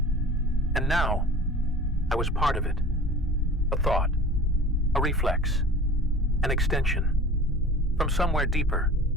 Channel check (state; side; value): normal; both; correlation 0.42